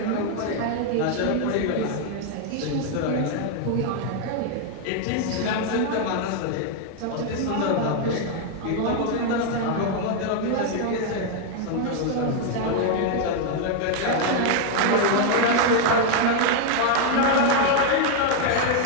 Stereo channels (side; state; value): both; different; correlation 0.00